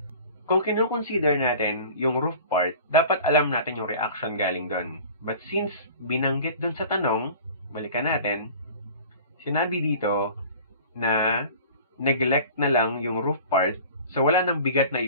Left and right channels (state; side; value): inverted; both; correlation -0.43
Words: Kung kino-consider natin yung roof part, dapat alam natin yung reaction galing doon. But since binanggit doon sa tanong, balikan natin, sinabi dito na neglect na lang yung roof part, so wala nang bigat na